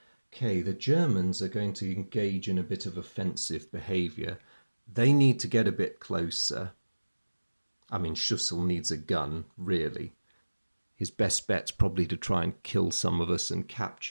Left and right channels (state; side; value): inverted; both; correlation -1.00